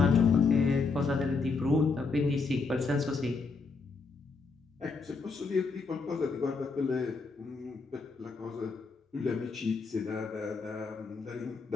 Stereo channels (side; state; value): right; quieter; 4.4 dB